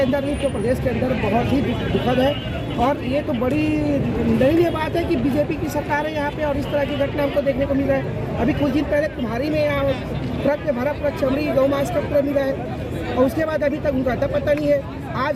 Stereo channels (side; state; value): both; identical; correlation 1.00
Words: अंदर नहीं तो प्रदेश के अंदर बहुत ही दुखद है। और ये तो बड़ी दयनीय बात है कि बीजेपी की सरकार है यहाँ पे और इस तरह की घटना हमको देखने को मिल रहा है। अभी कुछ दिन पहले तुम्हारी में यहाँ ट्रक में भरा पूरा चमड़ी गौ मांस का पूरा मिला है और उसके बाद अभी तक उनका अता पता नहीं है।